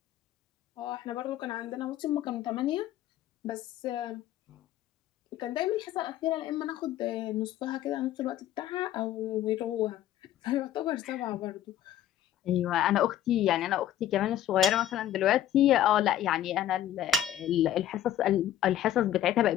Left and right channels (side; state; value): right; quieter; 11.6 dB